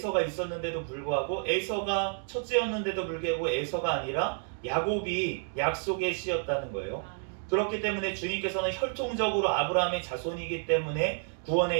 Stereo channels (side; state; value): left; silent; 58 dB below the other